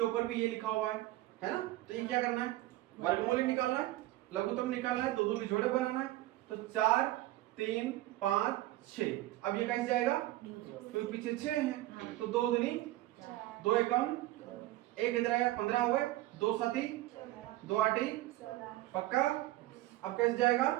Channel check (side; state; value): left; quieter; 16.7 dB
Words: ऊपर भी ये लिखा हुआ है ना? तो ये क्या करना है? वर्गमूल ही निकालना है, लघुत्तम निकालना है, दो दो के जोड़े बनाना है। तो 4 3 5 6। अब ये कैसे जाएगा? क्योंकि पीछे 6 है, तो 2 दूनी 2 एकम 1 इधर आया, 15 हो गए, 2 7 2 8 पक्का? अब कैसे जाएगा?